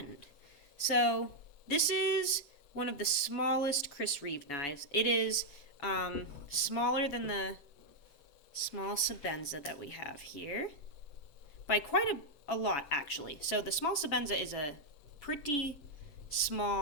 So, this is one of the smallest Reeve knives. It is smaller than the small Sebenza that we have here by quite a lot, actually. So the small Sebenza is a pretty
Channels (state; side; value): late; right; 7.0 ms